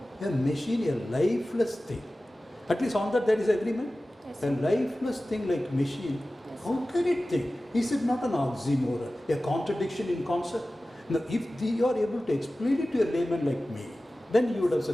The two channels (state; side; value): normal; both; correlation 0.96